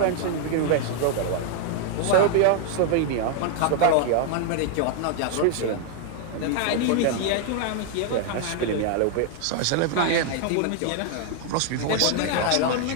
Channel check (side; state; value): both; different; correlation 0.00